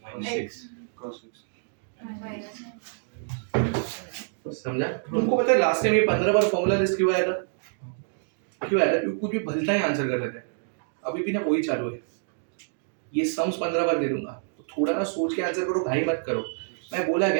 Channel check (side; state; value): left; silent; digital silence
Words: समझा? तुमको पता है लास्ट टाइम ये 15 बार फॉर्मूला लिस्ट क्यों आया था, क्यों आया था, क्योंकि कुछ भी भलता ही आंसर कर रहे थे, अभी भी ना वही चालू है, ये सम्स 15 बार दे दूंगा, तो थोड़ा ना सोच के आंसर करो, भाई मत करो, मैं बोला